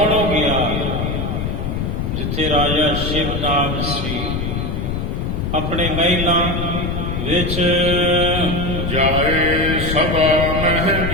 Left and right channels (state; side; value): noise; left; rumble, 2 dB below the sound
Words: हो गया जिथे राजा शिवनाभ सी, अपने महिलां विच जाए सभा मह